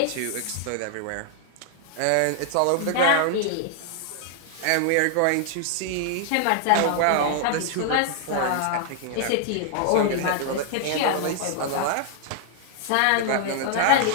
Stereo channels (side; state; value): both; different; correlation 0.00